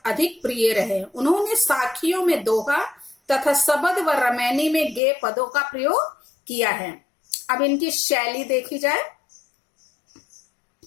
अधिक प्रिय रहे। उन्होंने साखियों में दोहा तथा सबद व रमैनी में गेय पदों का प्रयोग किया है। अब इनकी शैली देखी जाए।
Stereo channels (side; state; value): right; drops out; at 5.0 s